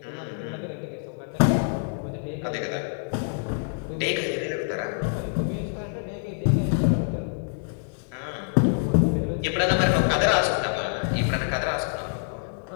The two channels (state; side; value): silent; right; digital silence